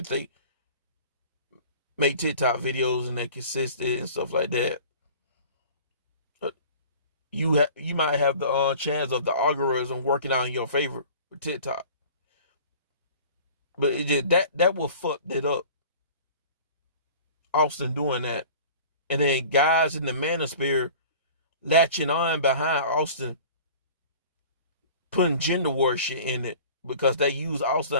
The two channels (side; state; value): both; inverted; correlation -0.44